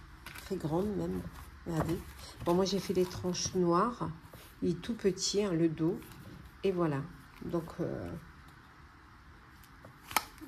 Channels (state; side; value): identical; both; correlation 1.00